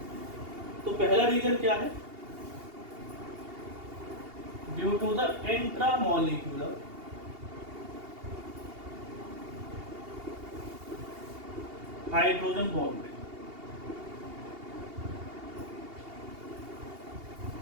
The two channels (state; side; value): late; left; 2.8 ms